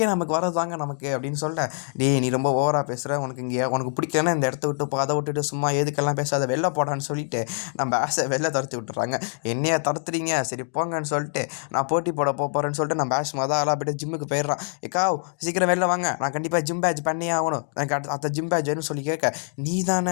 நமக்கு வரதாங்க நமக்கு அப்படின்னு சொல்ல, டேய் நீ ரொம்ப ஓவராக பேசுகிற, உனக்கு பிடிக்கலன்னா இந்த இடத்த விட்டு அதை விட்டுட்டு சும்மா எதுக்கெல்லாம் பேசாத, வெளில போடான்னு சொல்லிட்டு நம்ம ஆசை வெளில துரத்தி விட்டுறாங்க. என்னையா தடுத்துறீங்க, சரி போங்கன்னு சொல்லிட்டு நான் போட்டி போட போகிறேன்னு சொல்லிட்டு நான் பேட்ச் ஆளாக போய்ட்டு ஜிம்முக்கு போயிடுறான். ஏக்கா சீக்கிரம் வெளில வாங்க, நான் கண்டிப்பாக ஜிம் பேட்ச் பண்ணியே ஆகணும், எனக்கு அடுத்த ஜிம் பேட்ச் வேணும்னு சொல்லி கேட்க, நீ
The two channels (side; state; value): right; silent; 62 dB below the other